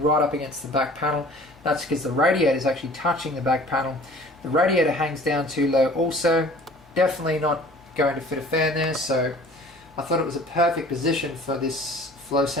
right up against the back panel. That's because the radiator is actually touching the back panel. The radiator hangs down too low also. Definitely not going to fit a fan there, so I thought it was a perfect position for this flow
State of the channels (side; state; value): right; noise; hum, 30 dB below the sound